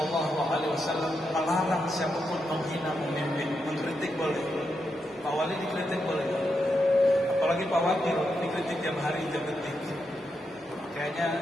melarang siapapun menghina pemimpin. Mengkritik boleh, Pak Wali dikritik boleh, apalagi Pak Wakil dikritik tiap hari, tiap detik.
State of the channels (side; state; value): both; normal; correlation 0.84